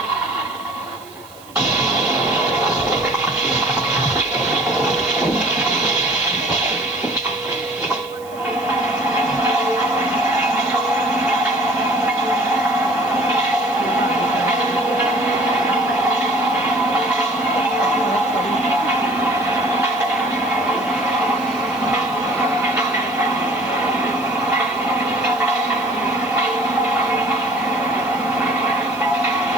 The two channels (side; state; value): right; noise; hiss, 23 dB below the sound